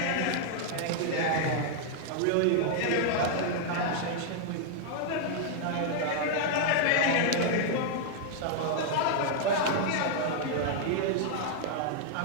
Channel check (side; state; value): both; different; correlation 0.00